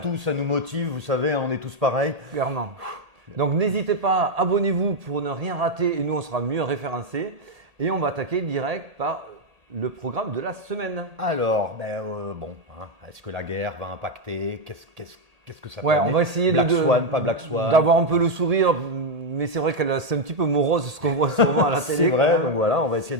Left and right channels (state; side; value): late; left; 1.8 ms